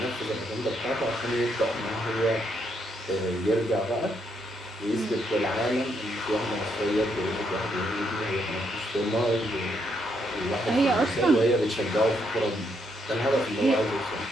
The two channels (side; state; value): both; normal; correlation 0.76